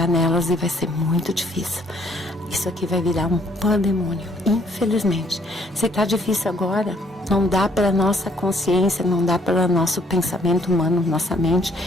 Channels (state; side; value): normal; both; correlation 0.64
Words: nelas e vai ser muito difícil. Isso aqui vai virar um pandemônio, infelizmente. Se está difícil agora, não dá para nossa consciência, não dá para nosso pensamento humano, nossa mente,